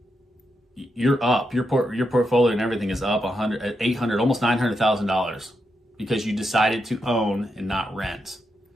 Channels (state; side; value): normal; both; correlation 0.84